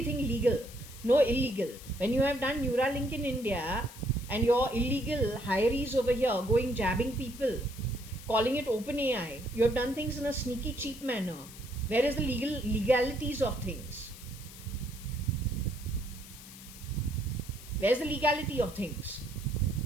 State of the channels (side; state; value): left; noise; hiss, 17 dB below the sound